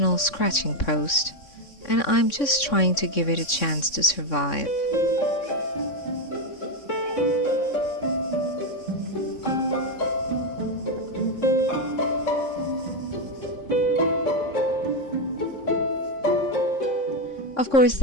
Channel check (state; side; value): late; right; 3.6 ms